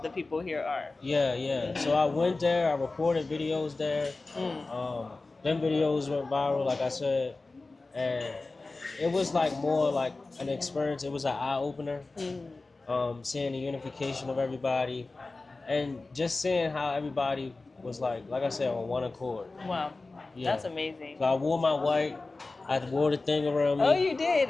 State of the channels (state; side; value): quieter; right; 3.5 dB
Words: the people here are. Yeah, yeah. So I went there. I recorded videos there. Mm. Them videos went viral, like I said, and it was like more like an experience. It was an eye opener. Mm. Seeing the unification of everybody, and just seeing how everybody was like I said, on one accord. Wow. Yeah. That's amazing. So I wore my white. I wore the thing around me. Oh, you did?